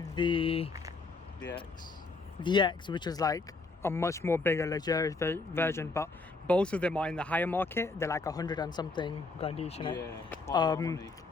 the X, which is like a much more bigger luxurious version, but both of them are in the higher market. They're like 100 and something grand each, innit? Yeah, quite a lot of money.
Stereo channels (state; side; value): quieter; right; 3.8 dB